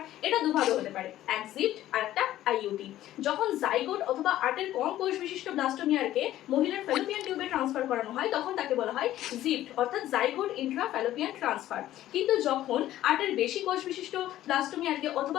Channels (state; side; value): quieter; right; 13.7 dB